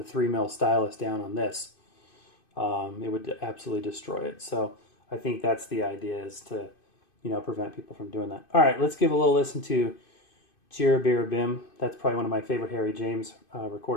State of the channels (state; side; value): late; right; 2.5 ms